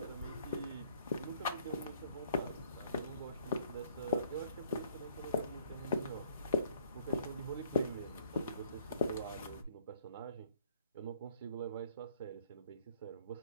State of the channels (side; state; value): both; inverted; correlation -0.60